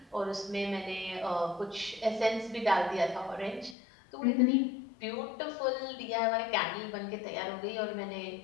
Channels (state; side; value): drops out; right; at 3.8 s